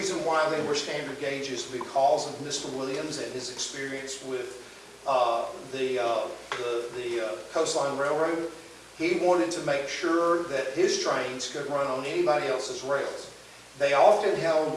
why they were standard gauge is because of Mr. Williams and his experience with the Coastline Railroad. He wanted to make sure that his trains could run on anybody else's rails. They often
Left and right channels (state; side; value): identical; both; correlation 1.00